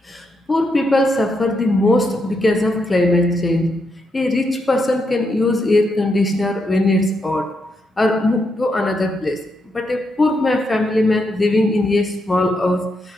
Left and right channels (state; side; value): normal; both; correlation 0.81